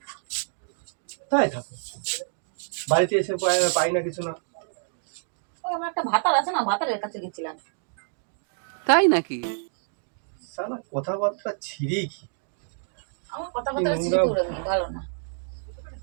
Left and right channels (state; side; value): silent; left; digital silence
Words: তাই থাকো, বাড়িতে এসে পাই না কিছু না। আমার একটা ভাতার আছে না, ভাতারের কাছে গেছিলাম। তাই নাকি? শালা কথাবার্তা ছিঁড়ি কি? আমার কথাবার্তা ভালো না।